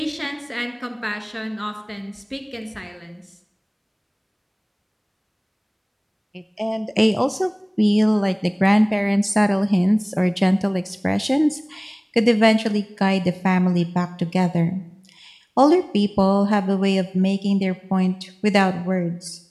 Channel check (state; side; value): identical; both; correlation 1.00